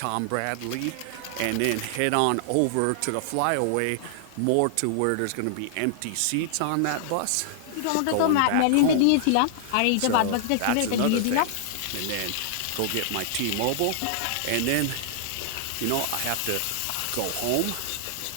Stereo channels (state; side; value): different; both; correlation -0.01